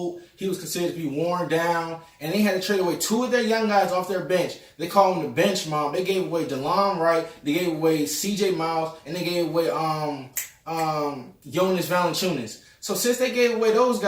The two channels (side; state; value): both; identical; correlation 1.00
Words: He was considered to be worn down, and they had to trade away 2 of their young guys off their bench. They call him the bench mom. They gave away DeLon Wright. They gave away C.J. Miles, and they gave away Jonas Valanciunas. So since they gave away those